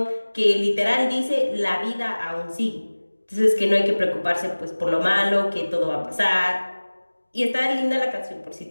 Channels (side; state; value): both; inverted; correlation -1.00